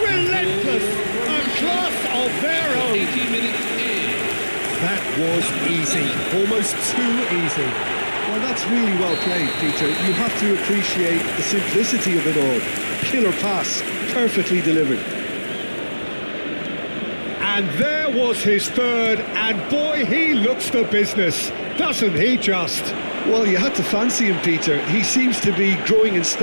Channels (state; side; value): inverted; both; correlation -1.00